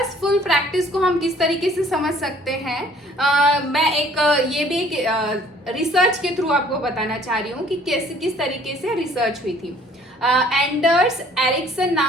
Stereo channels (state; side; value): normal; both; correlation 0.56